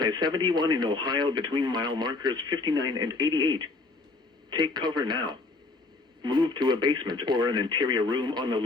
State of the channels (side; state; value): right; quieter; 3.5 dB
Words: I-71 in Ohio between mile markers 59 and 88. Take cover now. Move to a basement or an interior room on the